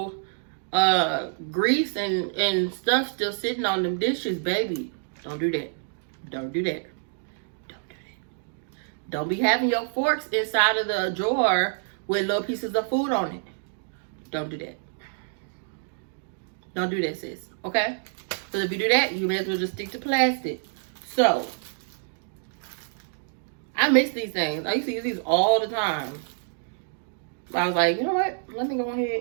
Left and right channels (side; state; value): left; silent; digital silence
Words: grease and stuff still sitting on them dishes, baby. Don't do that. Don't do that. Don't do that. Don't be having your forks inside of the drawer with little pieces of food on it. Don't do that. Don't do that, sis. Okay? Because if you do that, you may as well just stick to plastic. So, I miss these things. I used to use these all the time. I was like, you know what? Let me go